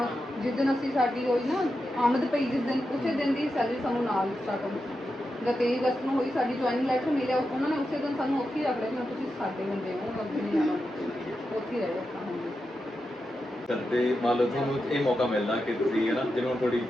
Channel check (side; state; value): both; normal; correlation 0.88